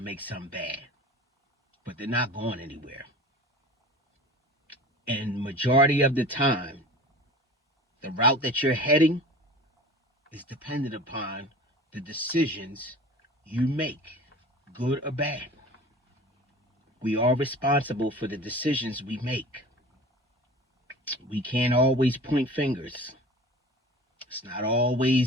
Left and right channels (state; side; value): normal; both; correlation 0.39